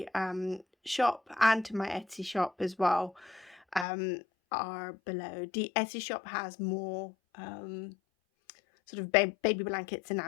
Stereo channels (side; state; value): right; drops out; at 3.9 s